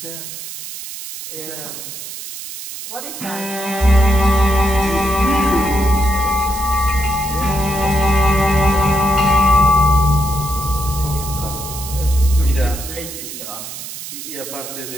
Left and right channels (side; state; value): right; noise; hiss, 10 dB below the sound